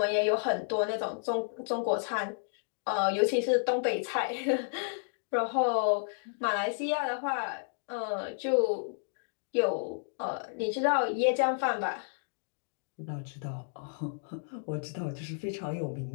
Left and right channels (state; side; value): silent; right; digital silence